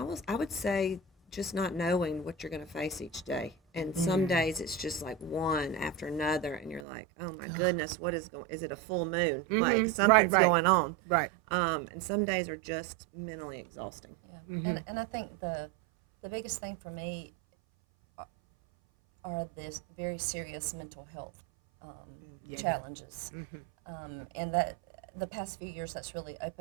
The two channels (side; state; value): left; drops out; at 6.9 s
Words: I would say just not knowing what you're going to face each day. And some days it's just like one after another, and you're like, oh my goodness, what is going? Is it a full moon? Like something's going on. Right. And some days are just mentally exhausting. Yeah. And I think the biggest thing for me are this very serious mental health challenges, and that the past few years that's really